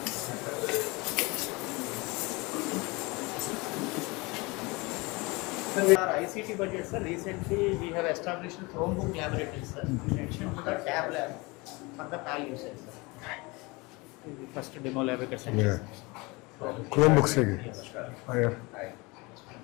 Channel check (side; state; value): right; quieter; 25.4 dB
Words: Our ICT budget, sir, recently we have established a Chromebook laboratory, sir, in addition to the tab lab for the PAL usage, sir. The first demo lab we can send. Chrome book से